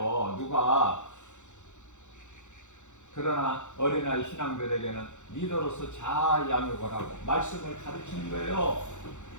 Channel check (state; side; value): late; right; 0.84 ms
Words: 누가. 그러나 어린아이 신앙들에게는 리더로서 잘 양육을 하고 말씀을 가르치는 거예요.